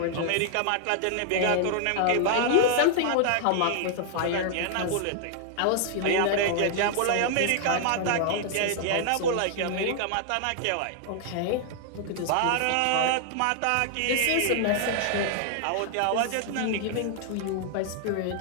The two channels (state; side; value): different; both; correlation -0.01